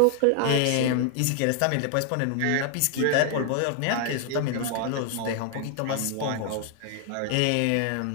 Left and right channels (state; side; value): different; both; correlation 0.00